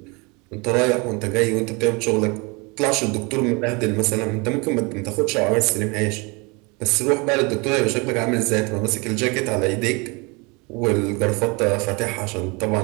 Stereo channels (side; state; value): left; quieter; 28.3 dB